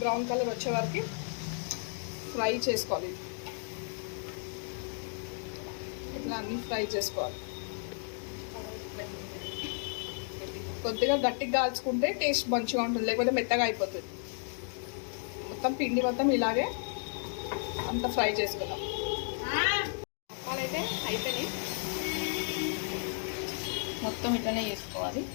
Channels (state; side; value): silent; right; 56 dB below the other